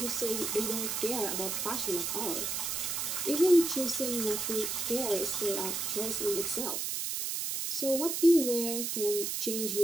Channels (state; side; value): noise; right; hiss, 1 dB below the sound